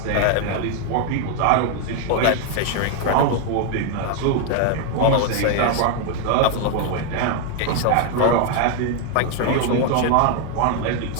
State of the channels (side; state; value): both; different; correlation 0.00